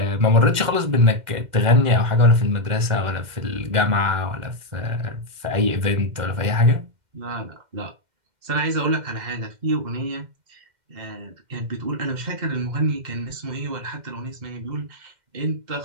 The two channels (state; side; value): late; left; 2.1 ms